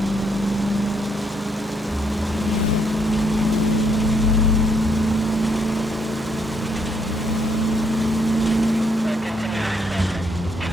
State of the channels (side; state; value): both; normal; correlation 0.72